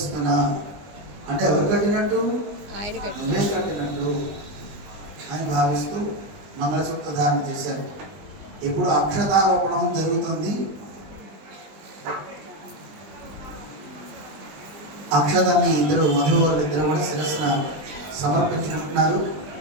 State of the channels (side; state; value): left; late; 20 ms